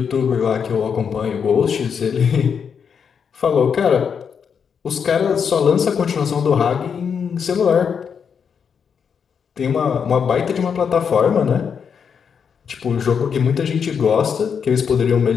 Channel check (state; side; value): quieter; right; 6.8 dB